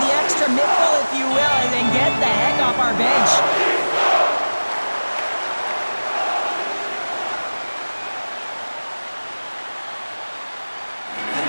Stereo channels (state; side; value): inverted; both; correlation -1.00